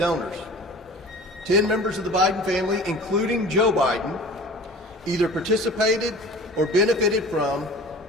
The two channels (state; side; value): normal; both; correlation 0.41